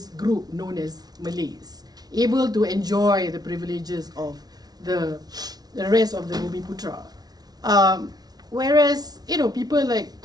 group known as Malays, able to enjoy the privileges of the rest of the Bumiputra. Whereas people like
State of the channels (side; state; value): left; late; 0.19 ms